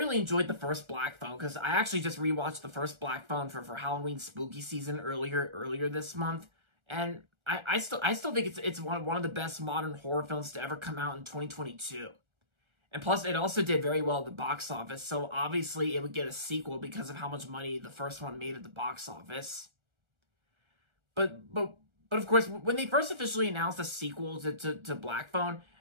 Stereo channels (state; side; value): late; left; 1.3 ms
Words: enjoyed the first Black Phone because I actually just rewatched the first Black Phone for Halloween Spooky Season earlier this month, and I still think it's one of the best modern horror films to ever come out in 2022. And plus, it also did very well at the box office, so obviously it would get a sequel because of how much money the first one made at the box office. But of course, when they first officially announced a sequel to Black Phone,